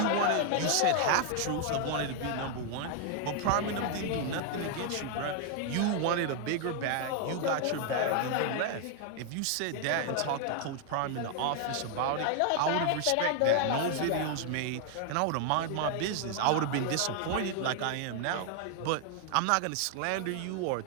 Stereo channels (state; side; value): different; both; correlation 0.00